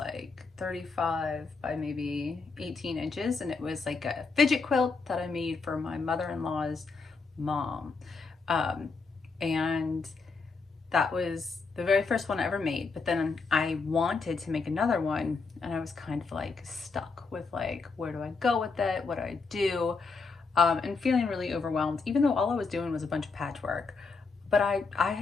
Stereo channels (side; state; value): right; quieter; 4.4 dB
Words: 35 by maybe 18 inches, and it was like a fidget quilt that I made for my mother-in-law's mom. Um, and that was the very first one I ever made. But then I wanted to make another one, and I was kind of like stuck with like, where do I go with it? What do I do? And feeling really overwhelmed, even though all I was doing was a bunch of patchwork. But I